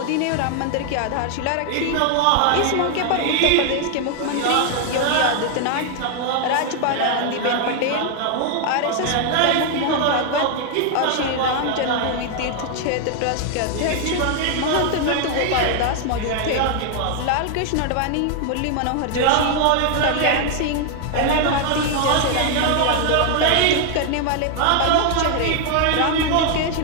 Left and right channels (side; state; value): both; different; correlation 0.00